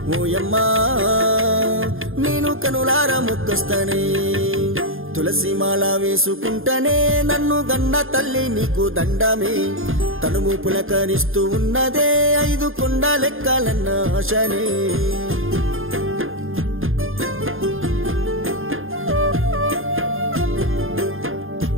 ఓయమ్మ నేను కనులార మొక్కొస్తనే తులసిమాల వేసుకుంటనే నన్ను గన్న తల్లి నీకు దండమే తనువు పులకరిస్తూ ఉన్నదే 5 కొండలెక్కాలన్న ఆశనే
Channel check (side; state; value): left; late; 0.60 ms